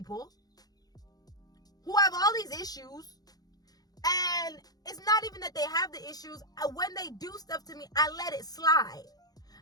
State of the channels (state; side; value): late; right; 0.19 ms